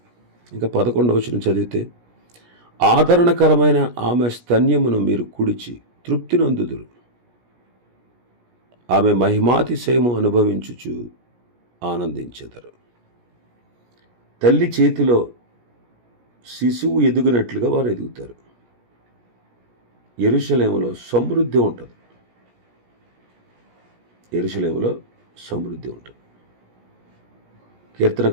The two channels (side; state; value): left; late; 17 ms